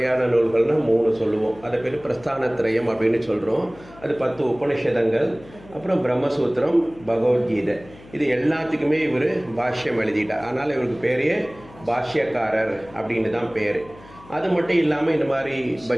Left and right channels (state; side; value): noise; left; hum, 22 dB below the sound